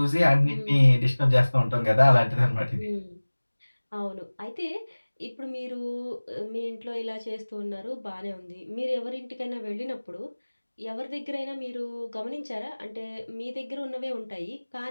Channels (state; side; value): inverted; both; correlation -1.00